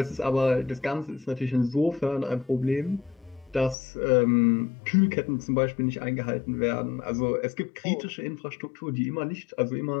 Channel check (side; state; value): right; drops out; at 3.8 s